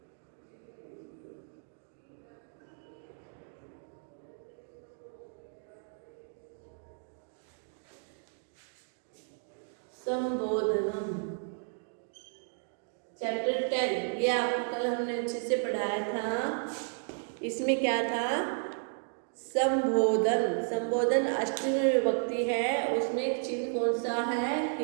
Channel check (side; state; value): left; silent; 56 dB below the other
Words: संबोधनम, चैप्टर 10। ये आपको कल हमने अच्छे से पढ़ाया था। इसमें क्या था? संबोधन। संबोधन अष्टमी विभक्ति है। उसमें एक चिन्ह कौन सा है?